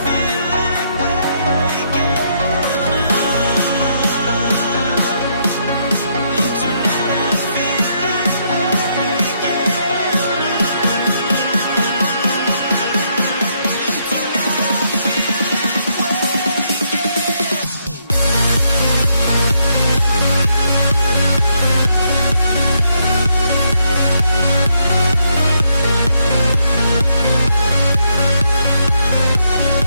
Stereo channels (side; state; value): both; inverted; correlation -0.76